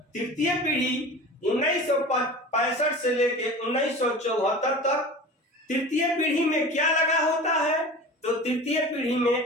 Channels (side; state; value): both; normal; correlation 0.36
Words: तृतीय पीढ़ी 1965 से लेके 1974 तक। तृतीय पीढ़ी में क्या लगा होता है, तो तृतीय पीढ़ी